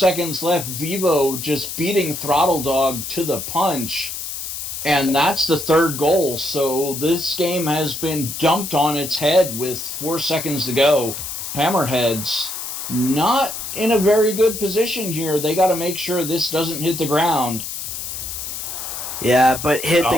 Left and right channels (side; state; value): left; noise; hiss, 6 dB below the sound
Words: left. Vivo just beating Throttle Dog to the punch. And that's the third goal. So this game has been dumped on its head with 4 seconds to go. Hammerheads not in a very good position here. They got to make sure this doesn't hit the ground. Yeah, but hit